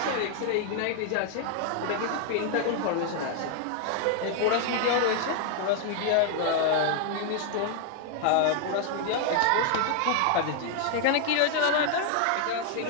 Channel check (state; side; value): different; both; correlation 0.00